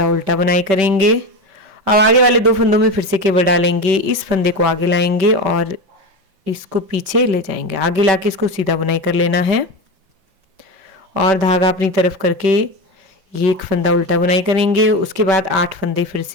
उल्टा बुनाई करेंगे। अब आगे वाले 2 फंदों में फिर से केवल डालेंगे, इस फंदे को आगे लाएंगे और इसको पीछे ले जाएंगे, आगे लाके इसको सीधा बुनाई कर लेना है और धागा अपनी तरफ करके ये एक फंदा उल्टा बुनाई करेंगे। उसके बाद 8 फंदे फिर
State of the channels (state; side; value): late; left; 5.2 ms